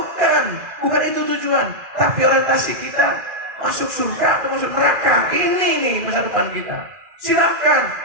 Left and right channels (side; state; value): left; late; 2.4 ms